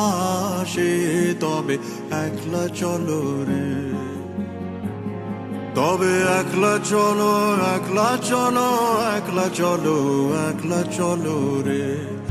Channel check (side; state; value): both; identical; correlation 1.00